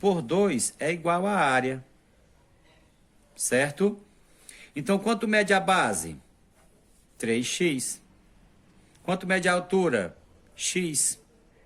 2 é igual à área, certo? Então, quanto mede a base? 3x. Quanto mede a altura? X.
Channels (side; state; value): both; identical; correlation 1.00